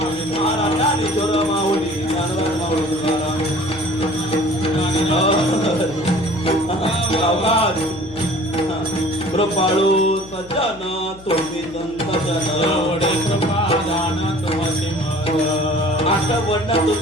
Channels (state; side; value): noise; left; hum, 21 dB below the sound